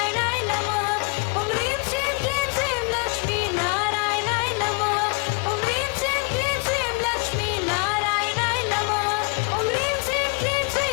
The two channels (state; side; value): quieter; right; 31.1 dB